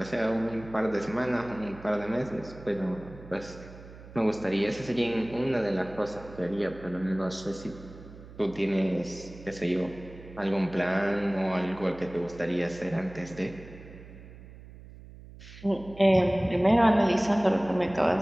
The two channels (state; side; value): noise; right; hum, 17 dB below the sound